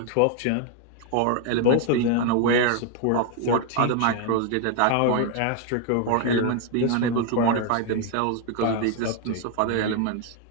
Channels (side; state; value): both; different; correlation 0.01